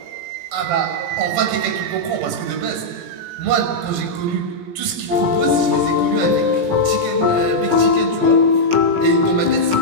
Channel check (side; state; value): left; late; 17 ms